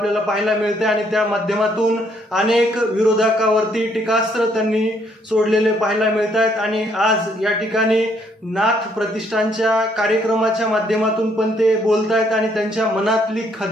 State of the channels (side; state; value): both; normal; correlation 0.69